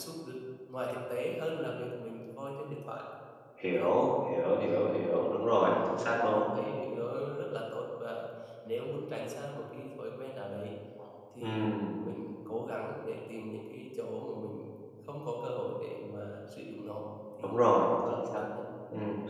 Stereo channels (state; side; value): identical; both; correlation 1.00